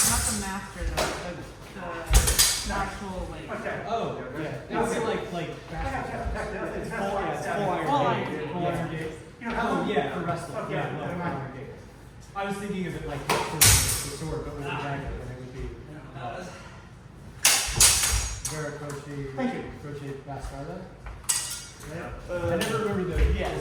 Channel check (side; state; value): both; identical; correlation 1.00